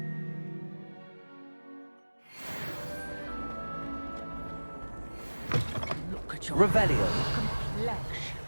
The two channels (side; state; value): both; inverted; correlation -1.00